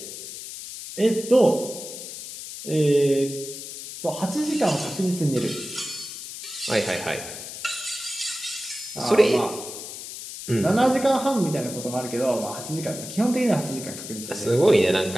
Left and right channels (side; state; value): left; noise; hiss, 10 dB below the sound